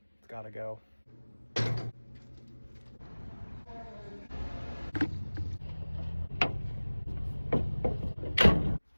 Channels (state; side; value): inverted; both; correlation -1.00